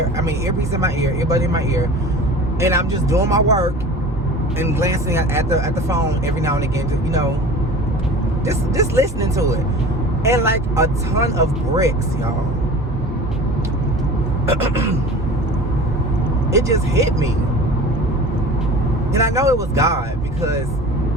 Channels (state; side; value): normal; both; correlation 0.38